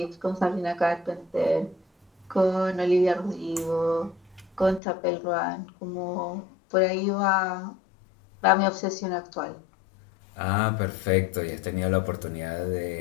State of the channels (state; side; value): drops out; right; at 4.8 s